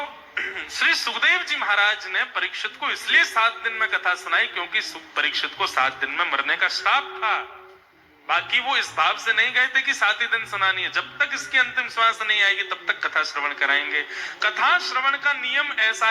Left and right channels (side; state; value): both; identical; correlation 1.00